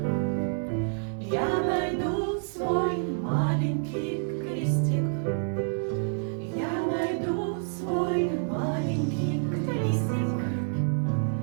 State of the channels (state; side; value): silent; left; 59 dB below the other